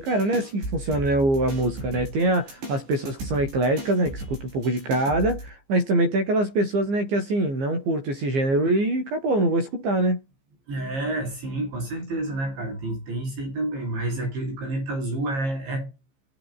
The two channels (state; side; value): late; left; 15 ms